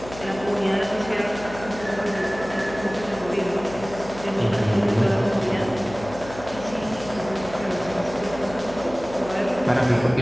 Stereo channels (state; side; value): noise; left; hum, 15 dB below the sound